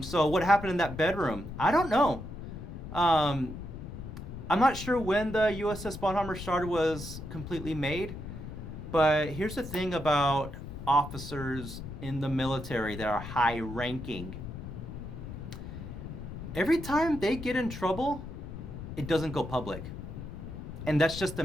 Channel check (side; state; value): left; noise; rumble, 9 dB below the sound